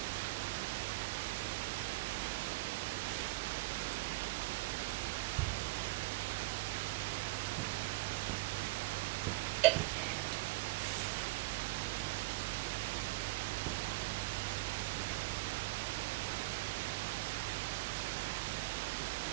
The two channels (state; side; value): quieter; left; 22.0 dB